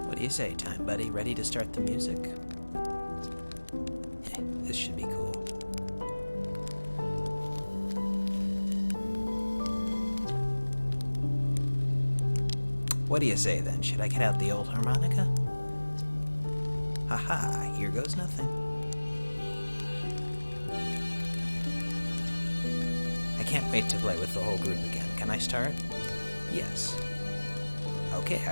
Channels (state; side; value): inverted; both; correlation -1.00